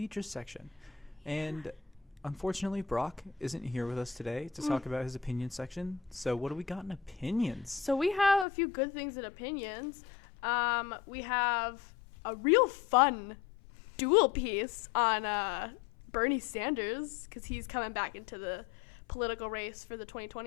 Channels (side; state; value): right; drops out; at 8.5 s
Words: section. And unfortunately, Brock isn't here with us today to talk about his opinion section. So what do we got in opinions? So we have a few good things in opinions. We have a real fun dual piece on Bernie Sanders, because he's coming back into the political race for the